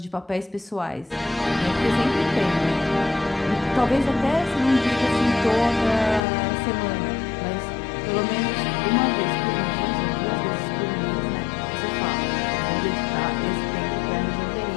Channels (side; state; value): right; drops out; at 6.2 s